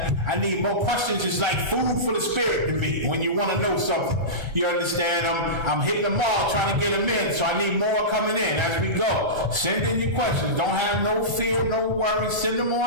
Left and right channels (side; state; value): left; late; 1.4 ms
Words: I need more questions. It's like food for the spirit to me when you want to know something. You understand? I'm hitting them all, trying to get them in, so I need more coming in as we go. Send in your questions. Don't have no fear, no worry. Send them